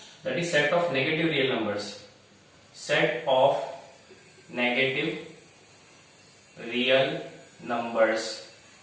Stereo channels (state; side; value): identical; both; correlation 1.00